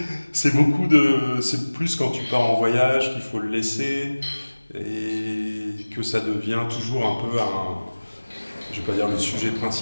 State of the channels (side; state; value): both; inverted; correlation -1.00